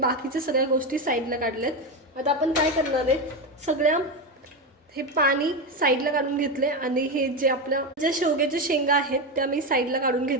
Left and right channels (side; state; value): both; normal; correlation 0.14